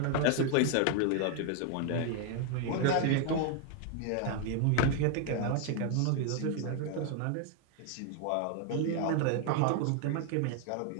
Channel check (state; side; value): different; both; correlation 0.00